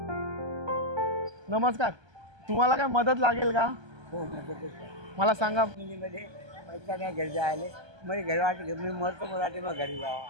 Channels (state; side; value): late; left; 1.3 ms